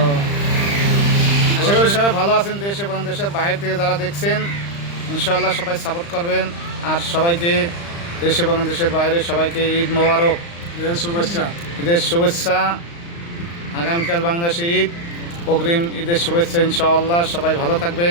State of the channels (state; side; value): late; right; 35 ms